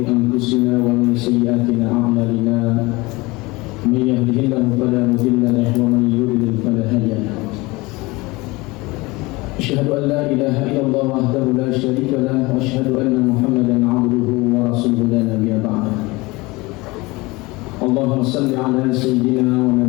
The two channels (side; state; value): right; quieter; 22.8 dB